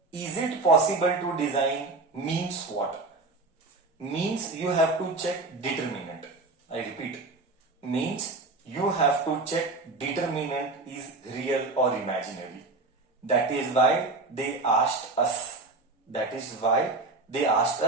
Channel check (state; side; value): quieter; left; 3.4 dB